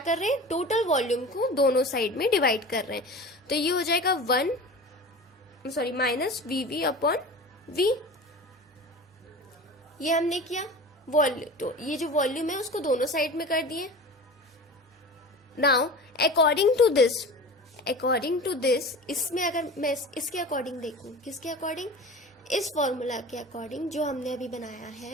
रहे हैं, टोटल वॉल्यूम को दोनों साइड में डिवाइड कर रहे हैं, तो ये हो जाएगा माइनस VV अपॉन V। ये हमने किया वॉल्यूम, तो ये जो वॉल्यूम है उसको दोनों साइड में कर दिए। नाउ अकॉर्डिंग टू दिस इसमें अगर मैं इसके अकॉर्डिंग देखूं, किसके अकॉर्डिंग, इस फॉर्मूला के अकॉर्डिंग जो हमने अभी बनाया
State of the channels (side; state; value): both; normal; correlation 0.35